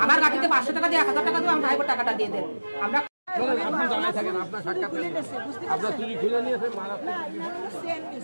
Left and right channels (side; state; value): both; inverted; correlation -1.00